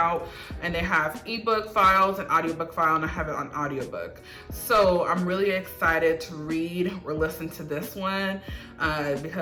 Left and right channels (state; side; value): identical; both; correlation 1.00